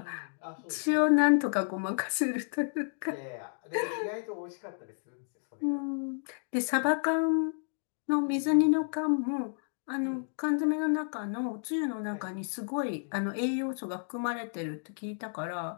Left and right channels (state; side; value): silent; right; digital silence